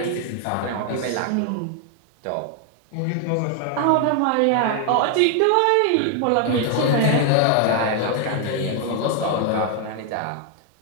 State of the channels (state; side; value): different; both; correlation 0.00